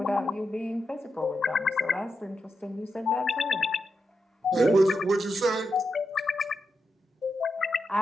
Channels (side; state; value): both; normal; correlation 0.86